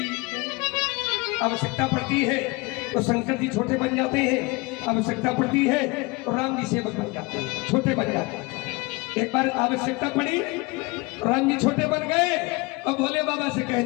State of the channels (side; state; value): right; quieter; 25.2 dB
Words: आवश्यकता पड़ती है तो शंकर जी छोटे बन जाते हैं, आवश्यकता पड़ती है तो राम जी सेवक बन जाते हैं, छोटे बन जाते हैं। एक बार आवश्यकता पड़ी, राम जी छोटे बन गए और भोले बाबा से